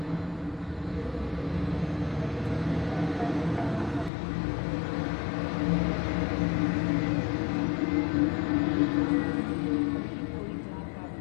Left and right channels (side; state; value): right; drops out; at 4.1 s